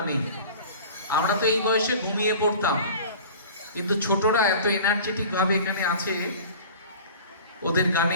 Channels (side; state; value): both; inverted; correlation -0.41